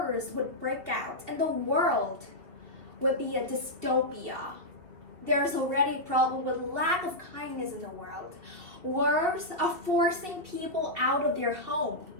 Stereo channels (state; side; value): late; left; 2.7 ms